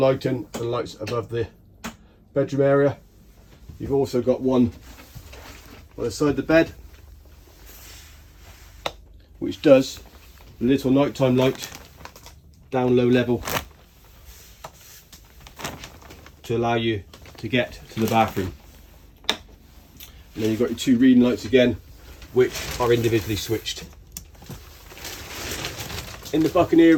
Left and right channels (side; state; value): both; identical; correlation 1.00